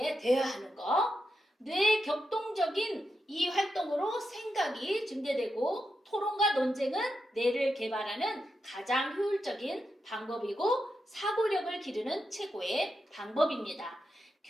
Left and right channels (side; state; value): both; normal; correlation 0.87